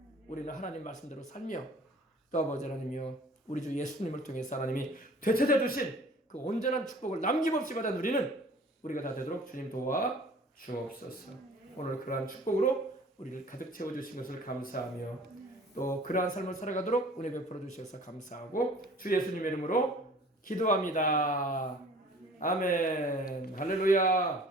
우리는 하나님 말씀대로 살며 또 아버지 하나님이여 우리 주 예수님을 통해서 하나님이 되찾아 주신 그 온전한 축복을 남김없이 받아 누리는 우리가 다 되도록 주님 도와 주옵소서. 오늘 그러한 축복으로 우리를 가득 채워주신 것을 감사하며 또 그러한 삶을 살아가도록 은혜 베풀어 주셔서 감사하고 주 예수님의 이름으로 기도합니다. 아멘.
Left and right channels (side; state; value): both; normal; correlation 0.49